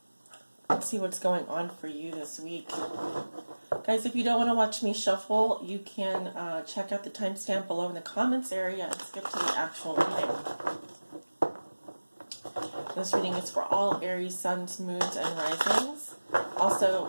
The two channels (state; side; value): inverted; both; correlation -1.00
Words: let's see what's going on for you this week. Guys, if you don't want to watch me shuffle, you can check out the timestamp below in the comments area and skip to the actual reading. This reading is for all Aries, suns, moons, and risings.